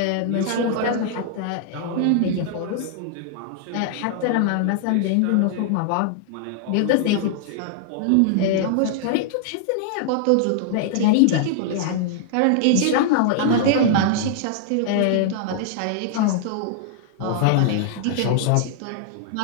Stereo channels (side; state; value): both; different; correlation -0.01